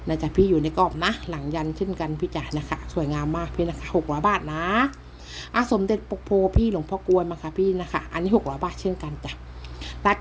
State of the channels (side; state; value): both; identical; correlation 1.00